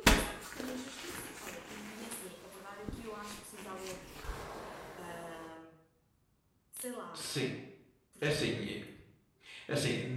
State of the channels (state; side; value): identical; both; correlation 1.00